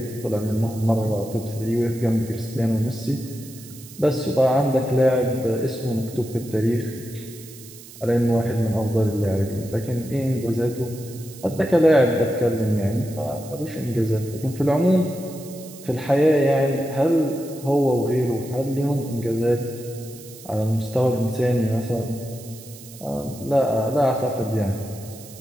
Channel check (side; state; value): right; noise; hiss, 18 dB below the sound